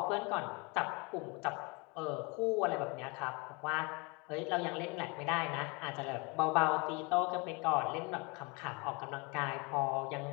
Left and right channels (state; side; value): quieter; right; 29.1 dB